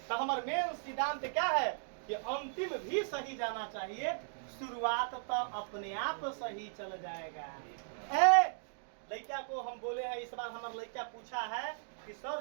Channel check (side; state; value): left; silent; digital silence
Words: तो हमारा मेन सिद्धांत क्या है कि अंतिम भी सही जाना चाहिए, शुरुआत तो अपने आप सही चल जाएगा। लड़का को हम बोले हैं, इस बार हमारा लड़का पूछा है कि